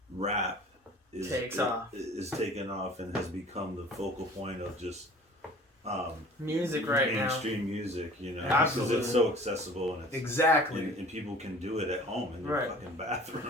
rap is taken off and has become the focal point of just music right now. Mainstream music, you know, Absolutely. because it's so accessible and it's and people can do it at home in their fucking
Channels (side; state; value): both; normal; correlation 0.46